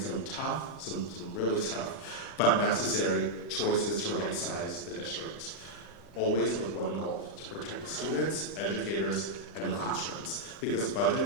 some tough, some really tough, but necessary choices to right-size the district. Always with one goal: to protect students, educators, and the classrooms. Because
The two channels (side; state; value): both; normal; correlation -0.03